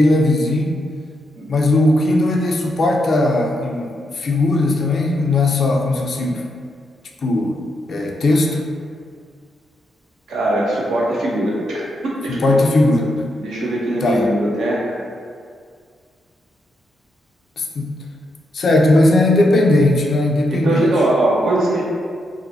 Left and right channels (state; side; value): normal; both; correlation 0.81